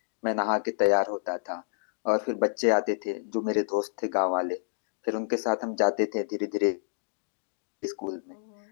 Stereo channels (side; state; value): right; silent; digital silence